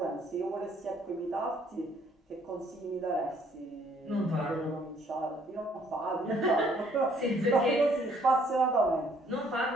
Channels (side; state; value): both; normal; correlation 0.63